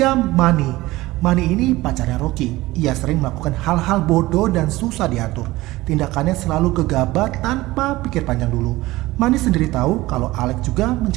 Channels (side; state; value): left; quieter; 18.6 dB